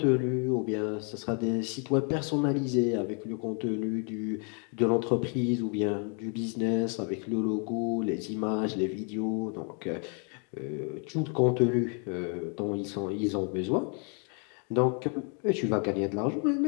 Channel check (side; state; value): right; quieter; 39.1 dB